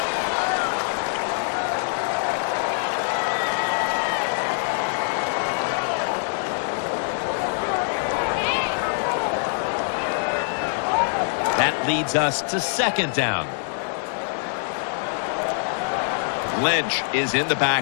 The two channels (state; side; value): silent; right; digital silence